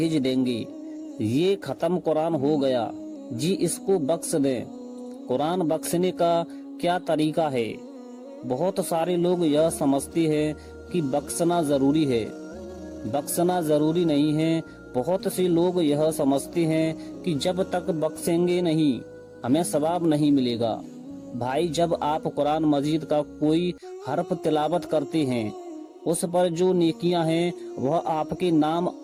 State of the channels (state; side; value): identical; both; correlation 1.00